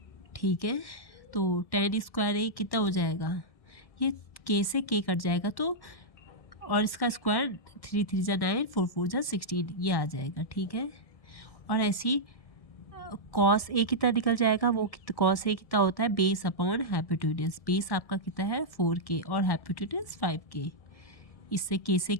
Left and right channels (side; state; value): right; late; 1.6 ms